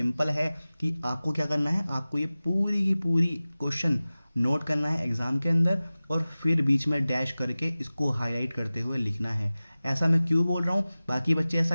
है कि आपको क्या करना है, आपको ये पूरी की पूरी क्वेश्चन नोट करना है एग्जाम के अंदर और फिर बीच में डैश करके इसको हाईलाइट करते हुए लिखना है। ऐसा मैं क्यों बोल रहा हूँ, बाकी बच्चे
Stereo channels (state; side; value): inverted; both; correlation -0.97